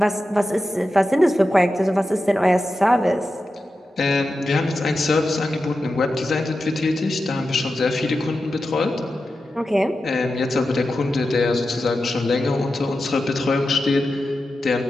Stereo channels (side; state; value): both; normal; correlation 0.91